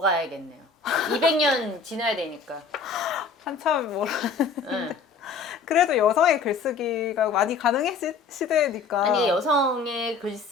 200년 지나야 되니까. 한참 뭐라 응. 그래도 여성의 글쓰기가 많이 가능해진 시대니까 아니 여성의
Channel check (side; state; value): right; quieter; 4.8 dB